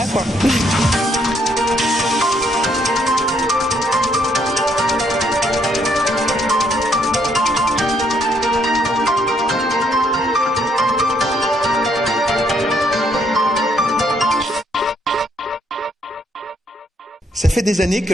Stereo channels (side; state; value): both; normal; correlation 0.71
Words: quoi. Ça fait des années que